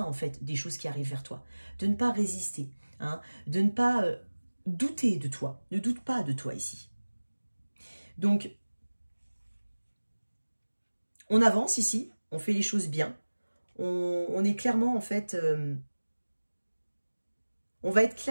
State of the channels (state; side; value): inverted; both; correlation -1.00